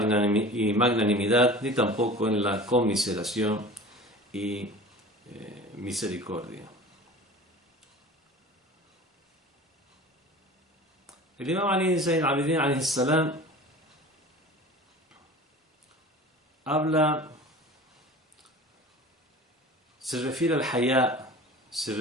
ni tampoco en la conmiseración y misericordia. El Imam Ali Zayn al-Abidin alayhi salam se refiere al hayá, se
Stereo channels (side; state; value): both; normal; correlation 0.39